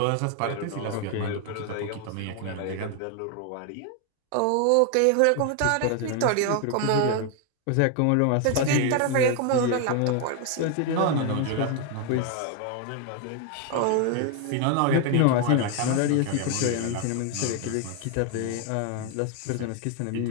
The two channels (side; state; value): both; different; correlation 0.01